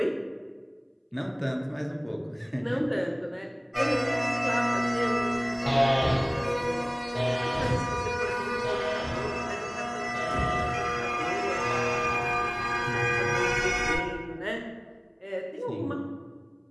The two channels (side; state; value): both; identical; correlation 1.00